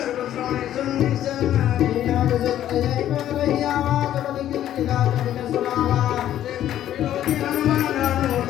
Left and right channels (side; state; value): right; quieter; 11.8 dB